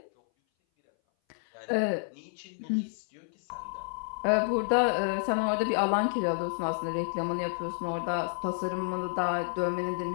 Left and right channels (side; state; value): right; silent; 58 dB below the other